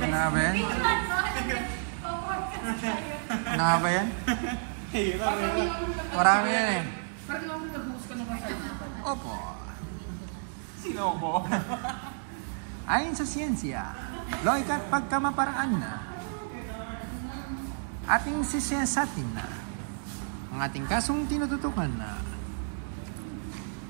nga ba yan? Ano nga ba yan? Marami yan eh. Parang ako nag-host ka naman sa Opo. Sino ko? Ayon sa siyensya, loika at pagkamaparaan na, ating sisiyasatin na, ang ating kasong tinututukan na.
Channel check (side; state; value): left; silent; digital silence